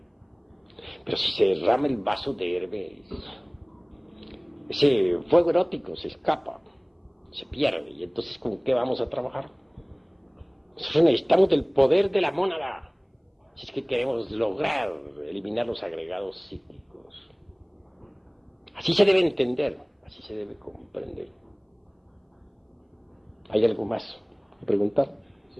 Pero si se derrama el vaso de Hermes, ese fuego erótico se escapa, se pierde, y entonces ¿con qué vamos a trabajar? Nosotros necesitamos del poder de la mónada, si es que queremos lograr eliminar los agregados psíquicos. Así se debe entender, así se debe comprender. ¿Hay algo más que preguntar?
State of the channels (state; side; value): identical; both; correlation 1.00